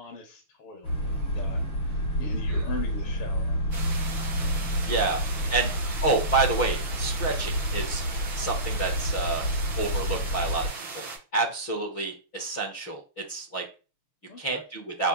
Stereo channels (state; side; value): late; right; 6.5 ms